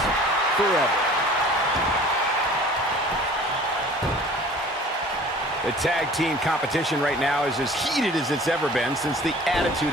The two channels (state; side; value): normal; both; correlation 0.47